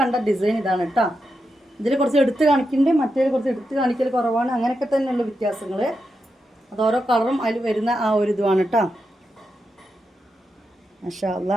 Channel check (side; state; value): both; normal; correlation 0.87